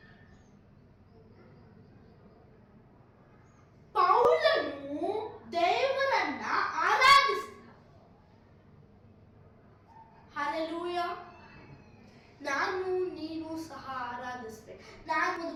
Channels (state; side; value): identical; both; correlation 1.00